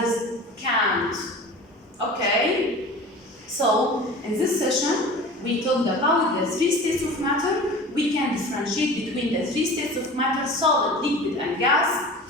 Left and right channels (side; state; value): both; normal; correlation 0.38